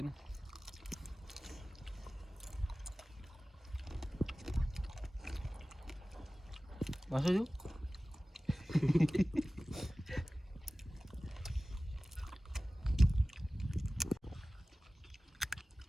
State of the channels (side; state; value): both; normal; correlation 0.97